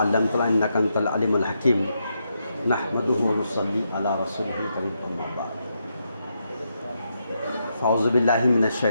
علمتنا انک انت العلیم الحکیم۔ نحمدہ ونصلی علی رسولہ الکریم، اما بعد۔ اعوذ باللہ من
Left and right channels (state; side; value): inverted; both; correlation -0.81